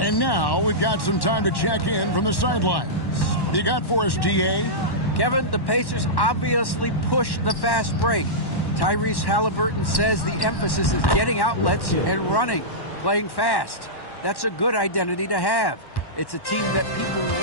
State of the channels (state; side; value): late; right; 1.1 ms